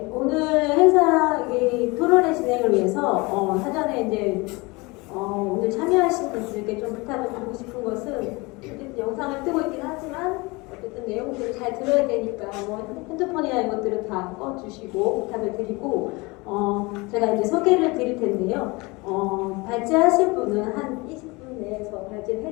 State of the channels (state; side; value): quieter; right; 25.0 dB